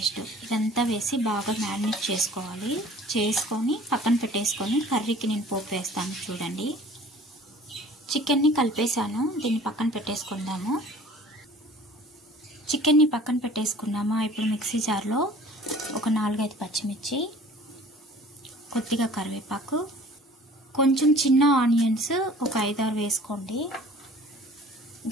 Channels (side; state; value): both; normal; correlation 0.48